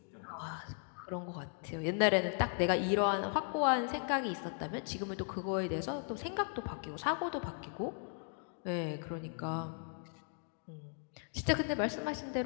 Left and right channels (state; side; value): silent; right; 53 dB below the other